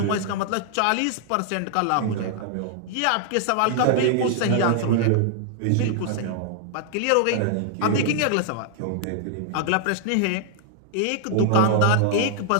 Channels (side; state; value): both; different; correlation -0.01